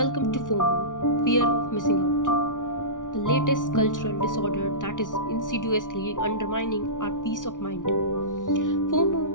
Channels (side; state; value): right; late; 0.88 ms